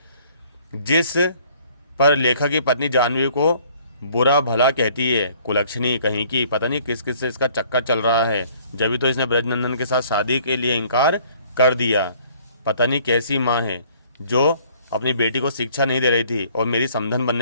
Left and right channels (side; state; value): both; inverted; correlation -0.58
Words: जिस पर लेखक की पत्नी जाह्नवी को बुरा भला कहती है, कुलक्षणी कहीं की, पता नहीं किस किस से इसका चक्कर चल रहा है, जब तो इसने ब्रजनंदन के साथ शादी के लिए इनकार कर दिया। पता नहीं कैसी माँ है जो अपनी बेटी को शिक्षा नहीं दे रही थी और मेरी समधन